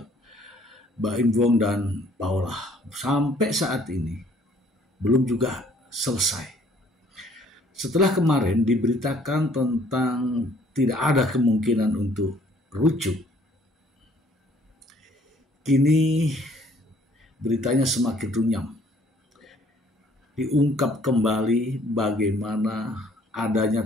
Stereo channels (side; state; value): both; normal; correlation 0.60